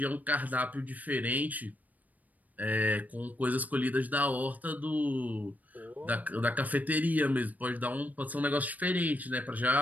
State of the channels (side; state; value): left; late; 0.078 ms